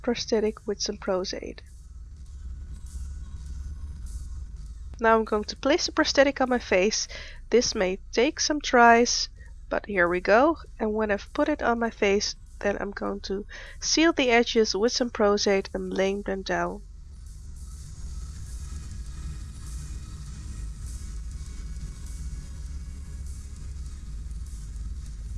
with some Prostate. Now I'm going to place the prosthetic on my face. This may take some tries, but here we go. And when I've put it on my face, then I'm going to seal the edges with some Prostate and lay them down.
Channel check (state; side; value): identical; both; correlation 1.00